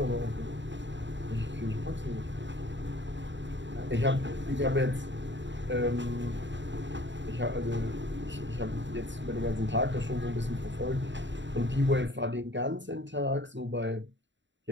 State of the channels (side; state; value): left; late; 0.53 ms